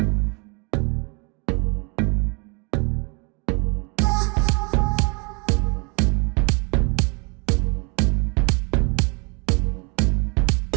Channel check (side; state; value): left; quieter; 31.6 dB